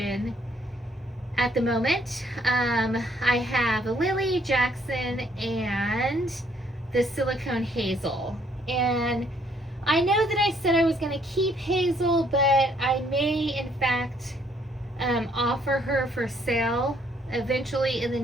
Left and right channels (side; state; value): both; normal; correlation 0.67